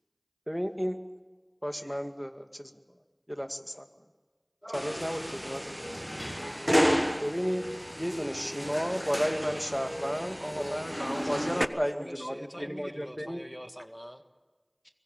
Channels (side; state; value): both; identical; correlation 1.00